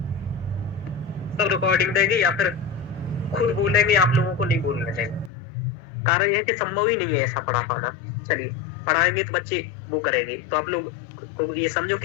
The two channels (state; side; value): drops out; right; at 5.3 s